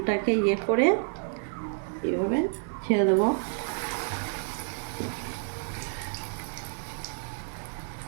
করে এইভাবে ছেড়ে দেবো।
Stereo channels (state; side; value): silent; left; 58 dB below the other